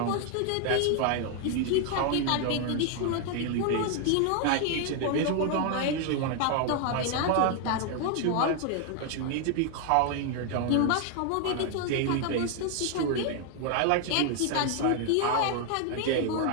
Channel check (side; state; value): both; different; correlation 0.00